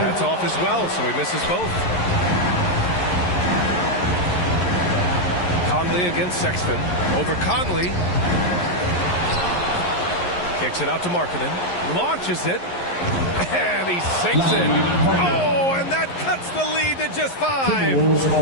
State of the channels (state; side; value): late; right; 11 ms